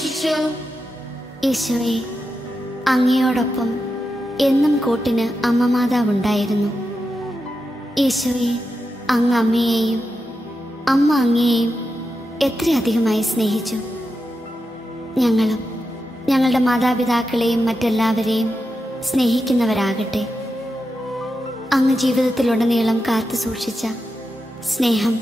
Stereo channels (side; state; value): both; normal; correlation 0.88